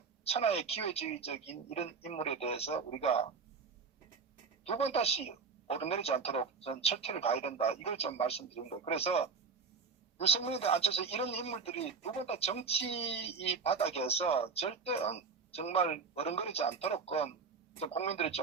천하의 기회주의적인 이런 인물에 대해서 우리가 두 번 다시 오르내리지 않도록 전 철퇴를 가야 된다. 이걸 좀 말씀드린 거예요. 그래서 유승민과 안철수 이런 인물들이 두 번 다 정치 이 바닥에서 절대 정말 어른거리지 않도록 좀 국민들이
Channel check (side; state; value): left; quieter; 5.0 dB